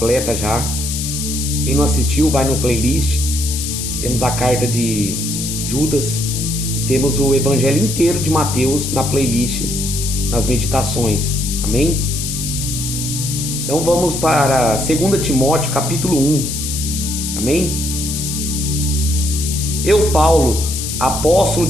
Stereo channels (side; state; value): left; noise; hiss, 4 dB below the sound